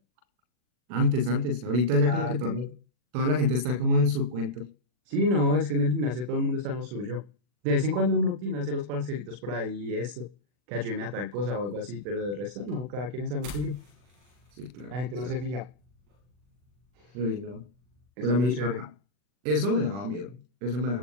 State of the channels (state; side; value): late; left; 40 ms